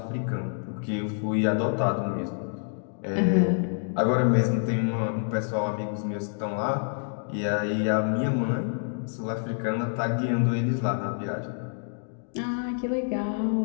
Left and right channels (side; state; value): right; silent; digital silence